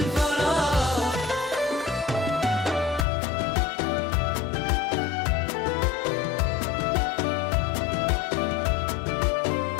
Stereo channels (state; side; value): drops out; right; at 3.1 s